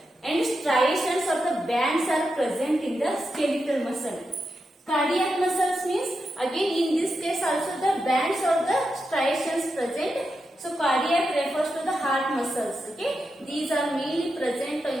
and striations of the bands are present in the skeletal muscle. Cardiac muscles means again in this case also the bands or the striations present. So cardiac refers to the heart muscles, okay? These are mainly present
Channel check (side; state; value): both; normal; correlation 0.87